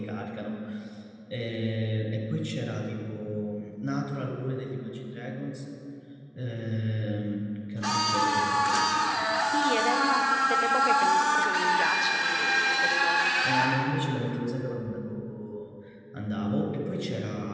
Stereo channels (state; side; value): identical; both; correlation 1.00